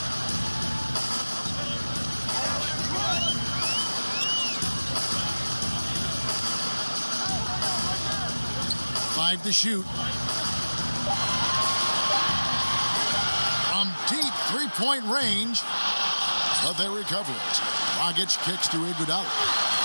Five to shoot. From deep three-point range, but they recover it. Dragic kicks to Iguodala.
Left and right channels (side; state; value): both; inverted; correlation -1.00